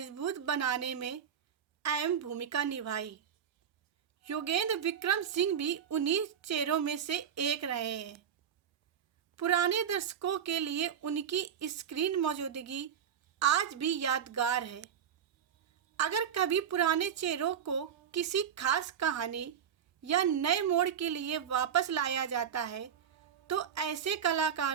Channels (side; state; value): left; quieter; 8.4 dB